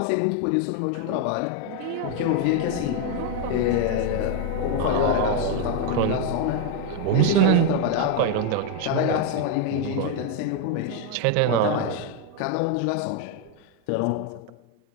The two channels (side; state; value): both; different; correlation 0.01